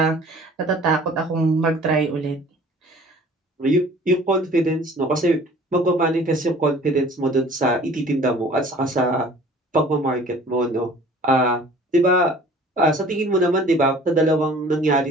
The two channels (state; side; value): normal; both; correlation 0.49